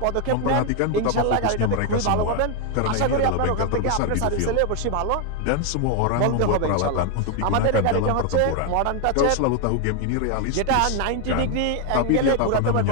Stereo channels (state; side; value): different; both; correlation 0.01